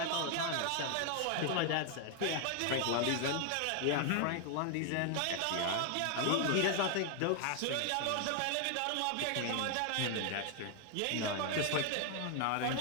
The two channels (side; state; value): both; different; correlation 0.00